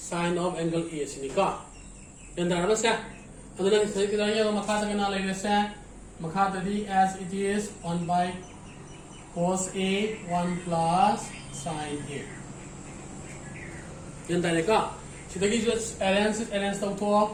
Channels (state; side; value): identical; both; correlation 1.00